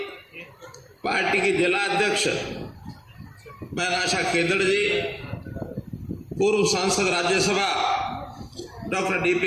पार्टी के जिला अध्यक्ष मैनाशा केदड़ जी, पूर्व सांसद राज्यसभा doctor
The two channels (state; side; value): identical; both; correlation 1.00